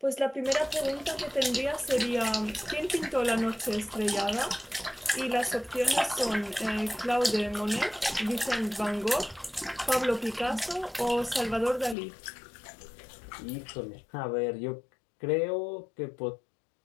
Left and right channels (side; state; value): right; drops out; at 12.0 s